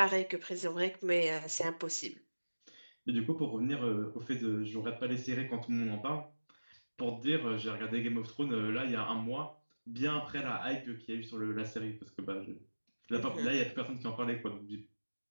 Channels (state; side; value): inverted; both; correlation -1.00